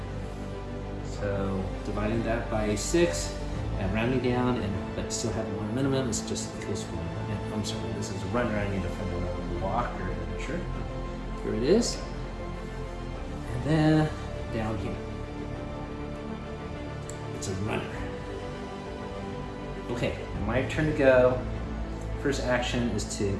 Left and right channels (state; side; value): identical; both; correlation 1.00